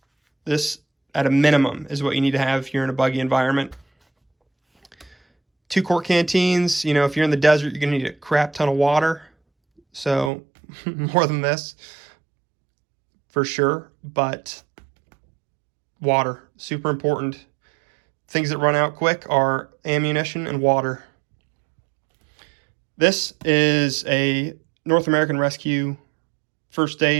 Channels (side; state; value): left; drops out; at 10.3 s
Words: This, at a minimum, is what you need to have if you're in a buggy environment. 2-quart canteens. You know, if you're in the desert, you're going to need a crap ton of water. So more than this, for sure. But water, super important. Things that run out quick are ammunition and water. This is a North American Rescue first